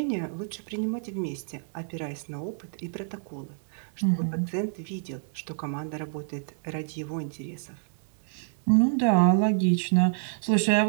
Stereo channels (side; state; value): left; silent; digital silence